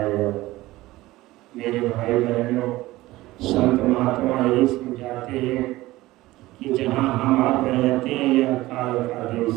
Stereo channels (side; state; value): left; quieter; 17.9 dB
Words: मेरे भाई बहनों, संत महात्मा यही समझाते हैं कि जहाँ हम आप रहते हैं यह काल का